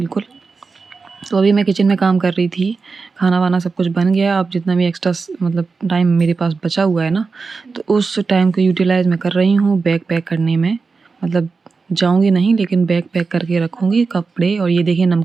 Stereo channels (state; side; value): quieter; left; 4.5 dB